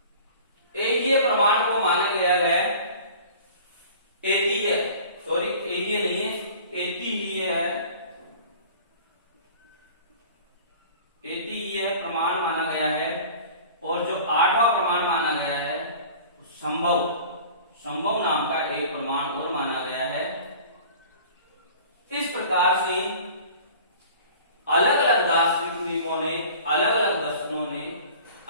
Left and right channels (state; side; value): inverted; both; correlation -0.43